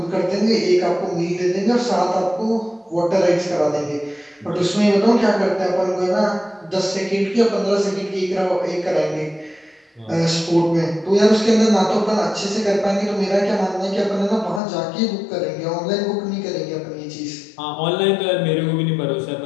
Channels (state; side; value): drops out; right; at 14.6 s